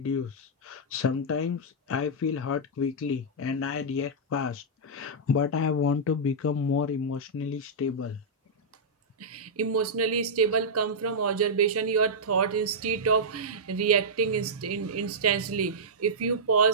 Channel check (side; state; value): both; normal; correlation -0.10